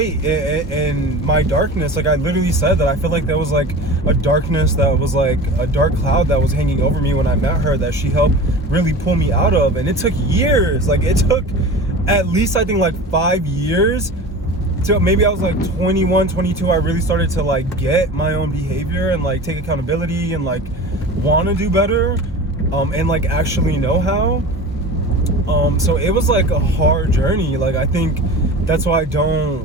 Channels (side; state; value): both; normal; correlation 0.35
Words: in my darkness. Like I literally said that I feel like there was like a darkness that was like a dark cloud that was hanging over me when I met her, that she helped really pull me out of. And it took years. Like it took at least, I think, like 5 years to maybe I was like 21, 22. I really started to like get my own behavior and like take accountability and like want to do better, and like actually know how. So it was like a hard journey. Like I think that's why I